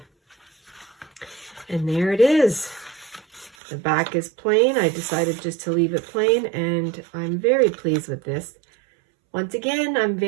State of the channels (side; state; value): left; drops out; at 3.6 s